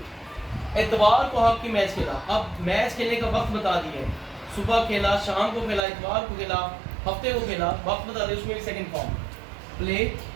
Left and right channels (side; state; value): left; drops out; at 5.8 s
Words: इतवार को हॉकी मैच खेला। अब मैच खेलने का वक्त बता दिया है, सुबह खेला, शाम को खेला, इतवार को खेला, हफ्ते को खेला, वक्त बता दिया, उसमें भी second form. Play